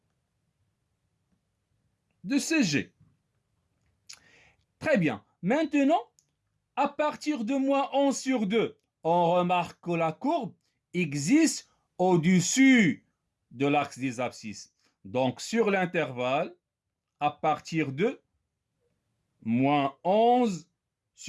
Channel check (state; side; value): identical; both; correlation 1.00